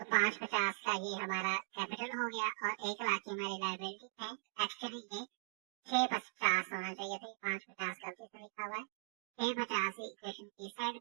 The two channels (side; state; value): left; silent; digital silence